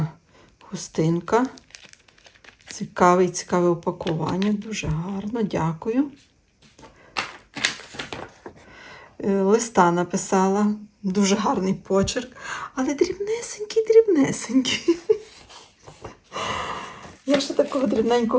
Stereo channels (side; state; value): both; identical; correlation 1.00